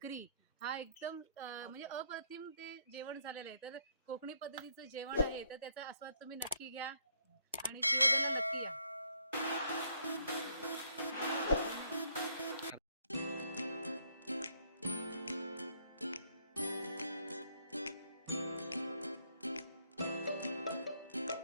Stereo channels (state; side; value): inverted; both; correlation -0.70